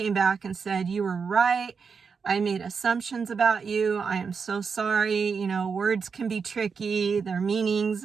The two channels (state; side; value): quieter; left; 5.6 dB